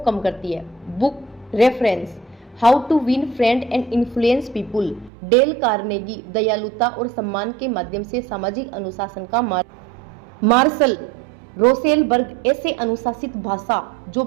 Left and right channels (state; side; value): drops out; left; at 5.1 s